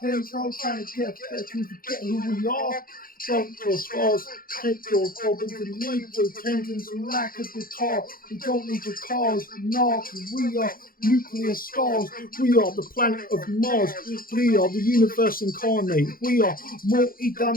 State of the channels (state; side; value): late; right; 0.42 ms